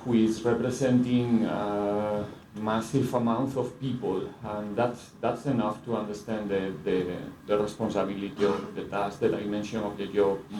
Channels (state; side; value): identical; both; correlation 1.00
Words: is representing a massive amount of people, and that's enough to understand the responsibility of the task, the dimension of the job,